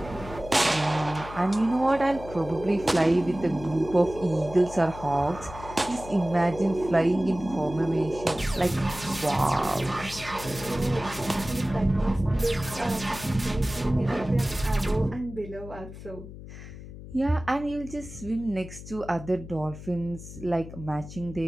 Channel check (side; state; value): left; noise; hum, 13 dB below the sound